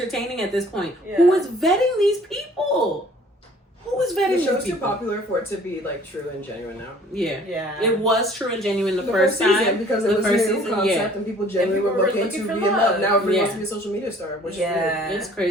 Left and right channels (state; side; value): normal; both; correlation 0.54